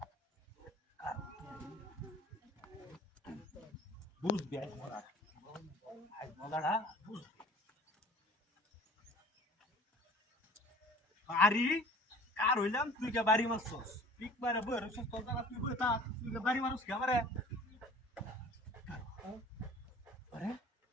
বুঝবি আজ মজাটা বুঝবি আরে কার হইলাম তুই কে বাড়ি মারছস পিক মারে বই রছস তোর জায়গা তুই বই তা তুই কে বাড়ি মারছস কে আমারে আরে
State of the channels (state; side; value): normal; both; correlation 0.46